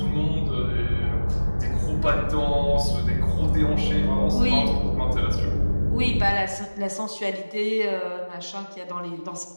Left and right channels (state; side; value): inverted; both; correlation -1.00